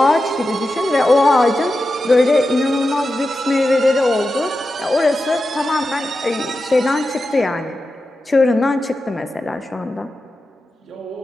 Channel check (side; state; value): both; normal; correlation 0.91